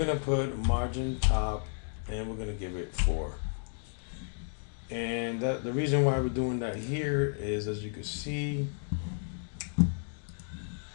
put margin top, and we're gonna give it 4. And the reason why we're doing that here is, as you can see,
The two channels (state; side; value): silent; right; digital silence